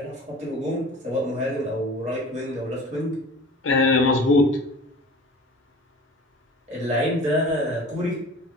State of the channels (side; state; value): both; normal; correlation 0.41